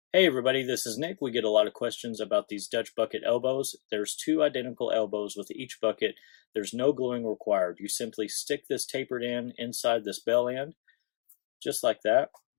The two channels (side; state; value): right; silent; digital silence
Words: Hey everybody, this is Nick. We get a lot of questions about these Dutch bucket elbows. There's two identical elbows with each bucket. There's no gluing required. You simply stick this tapered end inside this bell end, just like that,